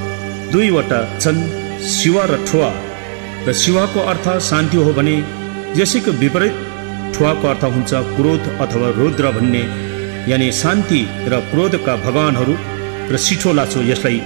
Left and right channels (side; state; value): left; silent; 70 dB below the other